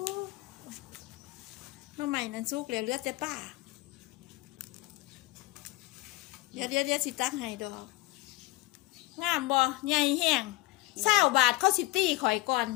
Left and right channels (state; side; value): quieter; right; 20.5 dB